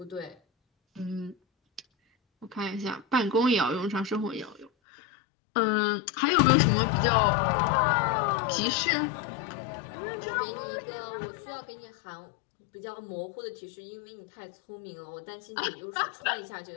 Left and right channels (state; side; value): drops out; right; at 4.7 s